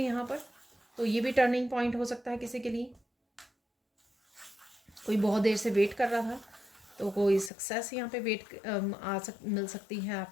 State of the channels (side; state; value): right; drops out; at 7.5 s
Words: पर, तो ये भी टर्निंग पॉइंट हो सकता है किसी के लिए। कोई बहुत देर से वेट कर रहा था, तो कोई सक्सेस यहाँ पे मिल सकती है